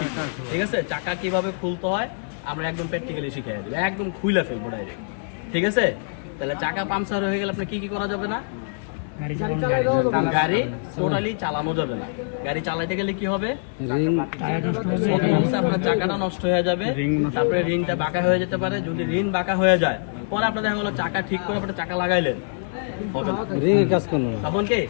ঠিক আছে, চাকা কিভাবে খুলতে হয় আমরা একদম প্র্যাকটিক্যালি শিখিয়ে দেব, একদম খুলে ফেলবো ডাইরেক্ট। ঠিক আছে, তাহলে চাকা পাংচার হয়ে গেলে আপনি কি কি করা যাবে না? গাড়ি টোটালি চালানো যাবে না। গাড়ি চালাইতে গেলে কি হবে, আপনার চাকাটা নষ্ট হয়ে যাবে, তারপরে রিংটা বাঁকা হয়ে যেতে পারে। যদি রিং বাঁকা হয়ে যায়, পরে আপনার দেখা গেলো চাকা ঠিক করে আপনার চাকা লাগাইলেন, তখন কি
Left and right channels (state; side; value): silent; right; digital silence